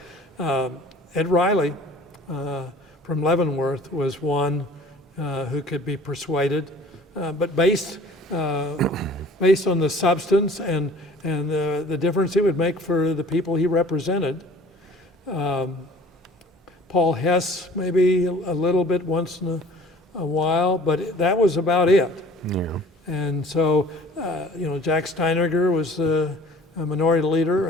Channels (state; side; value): normal; both; correlation 0.48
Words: Ed Riley from Leavenworth was one who could be persuaded, but based on the substance and the difference it would make for the people he represented. Paul Hess maybe a little bit once in a while, but that was about it. Yeah. And so, Jack Steinerger was a minority leader,